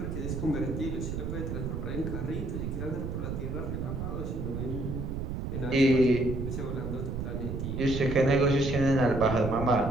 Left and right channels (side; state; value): right; noise; rumble, 4 dB below the sound